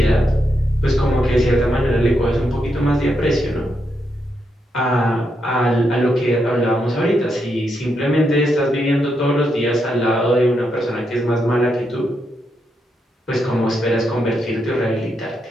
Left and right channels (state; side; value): normal; both; correlation 0.81